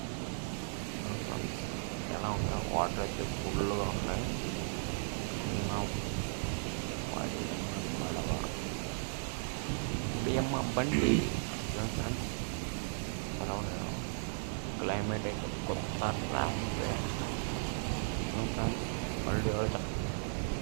ఎలా ఉంటాయి, వాటర్ అయితే ఫుల్గా ఉన్నాయి. బియ్యమ్మ బండి ఫ్రెండ్స్, ఎలా ఉన్నాయో. క్లైమేట్ అయితే కొత్త ర్యాపిడే ఫ్రెండ్స్. మళ్ళీ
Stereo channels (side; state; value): left; silent; digital silence